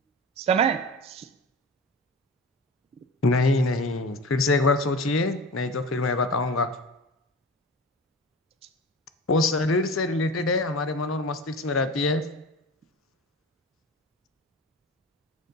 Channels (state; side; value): normal; both; correlation 0.33